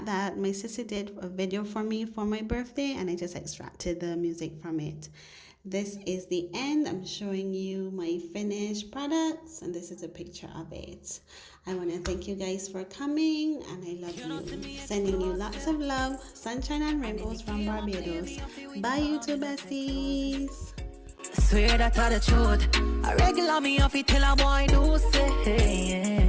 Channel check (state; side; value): identical; both; correlation 1.00